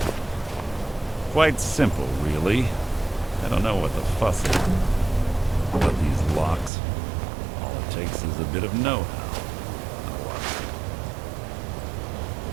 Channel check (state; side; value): drops out; left; at 6.7 s